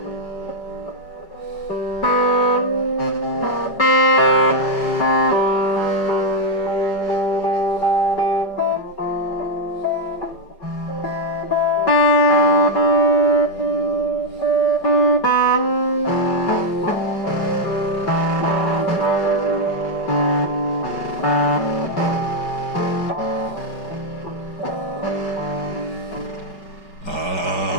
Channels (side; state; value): right; late; 5.3 ms